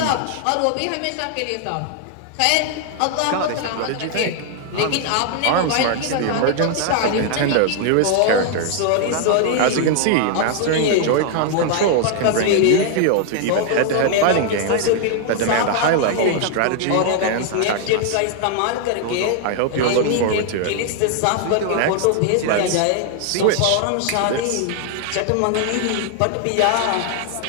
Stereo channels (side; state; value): both; different; correlation 0.00